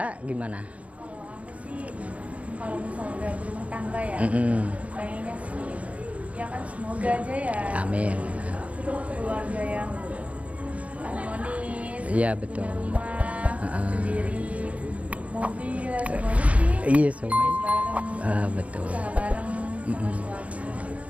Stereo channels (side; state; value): left; late; 0.066 ms